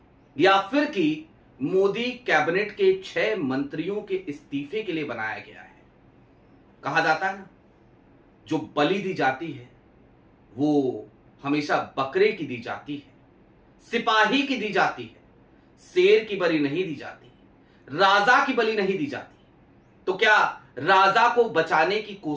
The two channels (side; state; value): both; identical; correlation 1.00